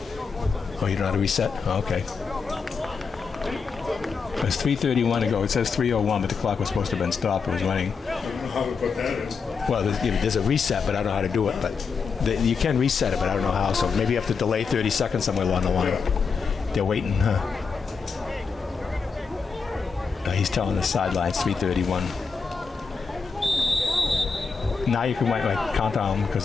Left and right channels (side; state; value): right; quieter; 5.3 dB